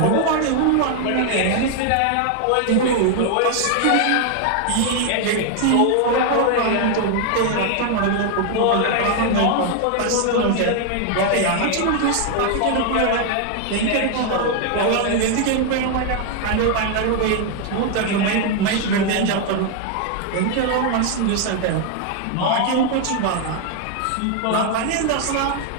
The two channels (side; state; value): both; different; correlation 0.00